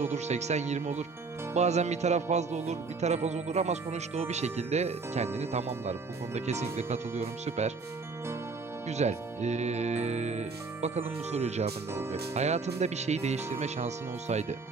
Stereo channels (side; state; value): left; quieter; 4.3 dB